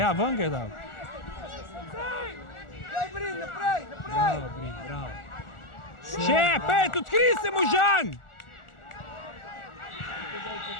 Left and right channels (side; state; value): right; late; 1.4 ms